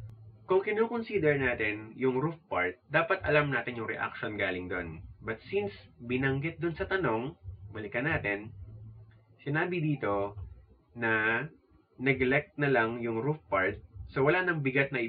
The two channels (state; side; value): identical; both; correlation 1.00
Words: Kung kino-consider natin yung roof part, dapat alam natin yung reaction galing doon. But since binanggit doon sa tanong, balikan natin, sinabi dito na neglect na lang yung roof part, so wala nang bigat na